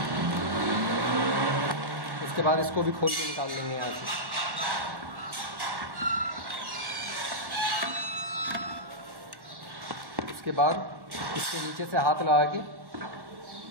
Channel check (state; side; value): late; left; 1.1 ms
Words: उसके बाद इसको भी खोल के निकाल लेंगे यहाँ से। उसके बाद इसके नीचे से हाथ लगा के